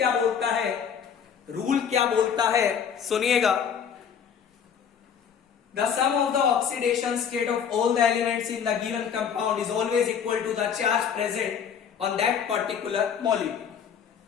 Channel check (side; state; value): right; quieter; 7.6 dB